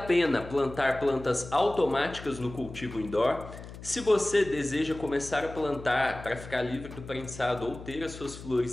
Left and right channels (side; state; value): left; noise; hum, 14 dB below the sound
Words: plantar plantas automáticas no cultivo indoor? Se você deseja começar a plantar para ficar livre do prensado ou ter as suas